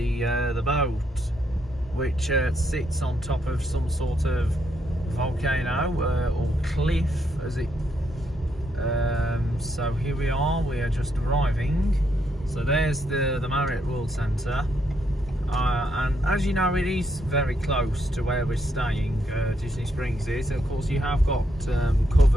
boat, which sits on top of some sort of volcano or cliff, as it. So here we are just arriving. So there's the Marriott World Centre, and as you know, it is very close to where we're staying. Disney Springs is, of course you have got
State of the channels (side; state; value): both; normal; correlation 0.76